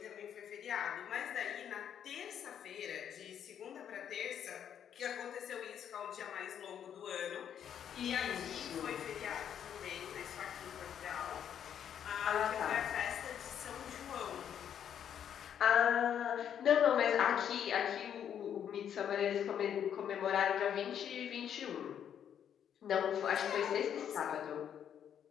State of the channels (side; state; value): right; quieter; 9.0 dB